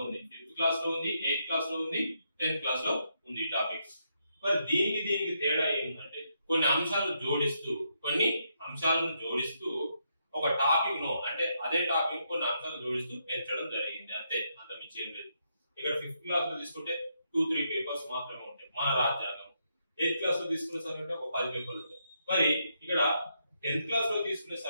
ఉంది, 5th క్లాస్ లో ఉంది, 8th క్లాస్ లో ఉంది, 10th క్లాస్ లో ఉంది ఈ టాపిక్. మరి దీనికి తేడా ఏంటంటే కొన్ని అంశాలను జోడిస్తూ ఒక టాపిక్ ను అంటే అదే టాపిక్ కొన్ని అంశాలను జోడిస్తూ పెంచడం జరిగింది, అంతే, అంత మించి ఏం లేదు. ఇక్కడ 5th క్లాస్ లో తీసుకుంటే 2-3 పేపర్స్ మాత్రమే ఉంటాయి మన రాజ్యాంగం. 8th క్లాస్ లో తీసుకునే సరికంటే ఒక 10 పేపర్లు ఉంటాయి. మరి ఇక్కడ 10th క్లాస్ లో తీసుకునే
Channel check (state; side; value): inverted; both; correlation -0.79